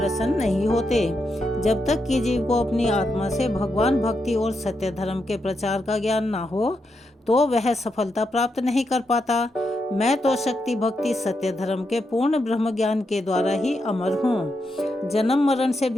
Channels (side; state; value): both; normal; correlation 0.83